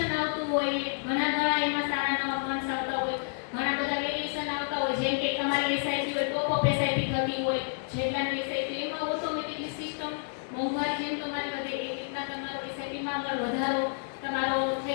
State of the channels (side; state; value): right; silent; digital silence